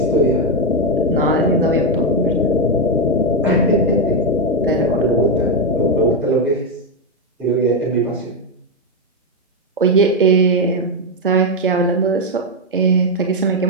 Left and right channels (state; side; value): normal; both; correlation 0.04